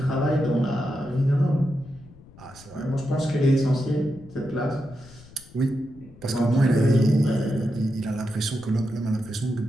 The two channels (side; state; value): left; noise; rumble, 22 dB below the sound